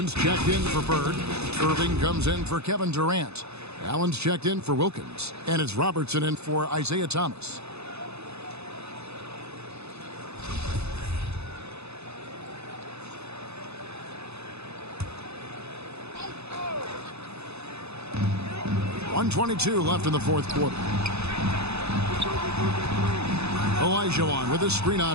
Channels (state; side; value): late; left; 0.80 ms